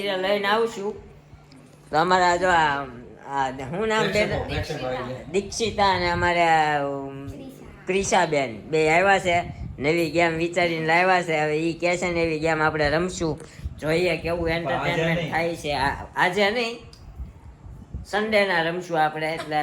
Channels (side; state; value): both; identical; correlation 1.00